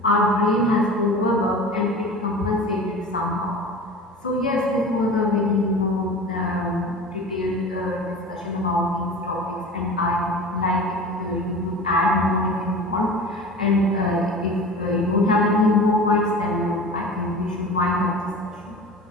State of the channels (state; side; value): normal; both; correlation 0.36